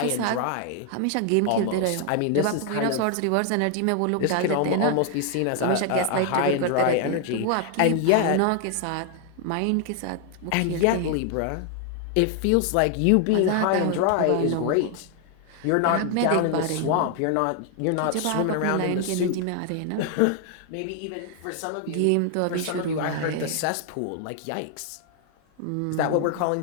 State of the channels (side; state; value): both; different; correlation 0.00